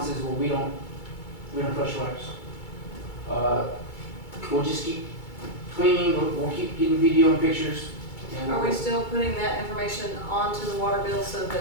is, well, we don't flush wipes. We'll just keep cleaning, we'll keep getting video and pictures. And Are we still putting that information onto the water bill so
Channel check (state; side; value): late; right; 2.3 ms